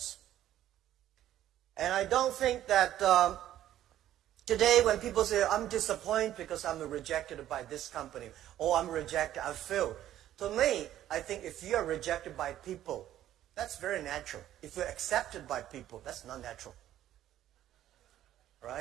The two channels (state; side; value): quieter; left; 12.4 dB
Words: And I don't think that today when people say, I'm disappointed because I'm rejected by this company, or I'm rejected, I failed. To me, I think if you are rejected by people, that's very natural. If you're accepted by people, that's not natural.